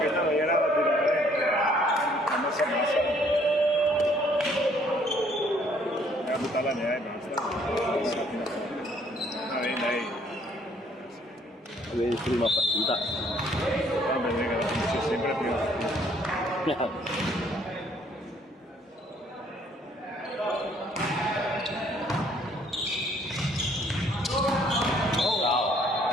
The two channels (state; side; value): normal; both; correlation 0.63